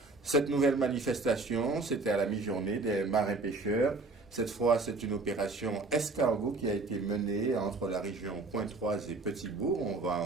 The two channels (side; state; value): left; quieter; 3.4 dB